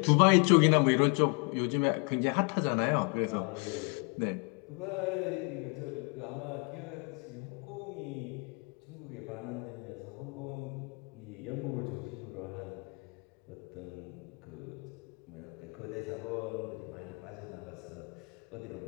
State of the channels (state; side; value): quieter; right; 34.7 dB